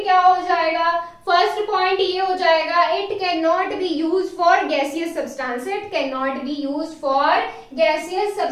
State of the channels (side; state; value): both; identical; correlation 1.00